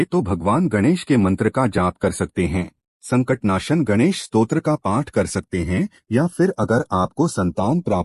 तो भगवान गणेश के मंत्र का जाप कर सकते हैं। संकटनाशन गणेश स्तोत्र का पाठ कर सकते हैं, या फिर अगर आपको संतान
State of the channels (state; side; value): identical; both; correlation 1.00